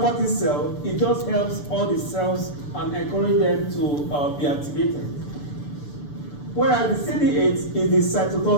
T cell, it just helps all the cells and encourage them to be activated. Whereas the CD8 is the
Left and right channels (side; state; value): right; late; 6.9 ms